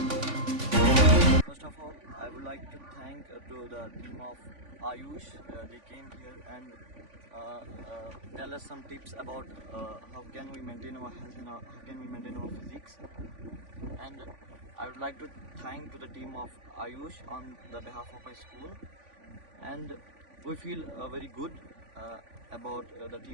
First of all, I would like to thank to the team of Ayush. They came here and tell us some tips about how can we maintain our health and how can we maintain our physiques. And I would like to thank to the team of Ayush on the behalf of my school. And we feel very good about the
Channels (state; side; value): late; left; 3.5 ms